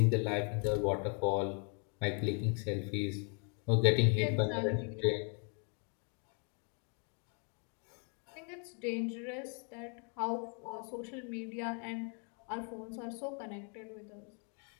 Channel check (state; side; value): quieter; right; 39.6 dB